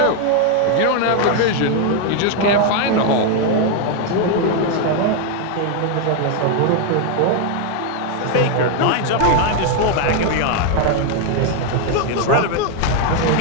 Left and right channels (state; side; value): different; both; correlation 0.01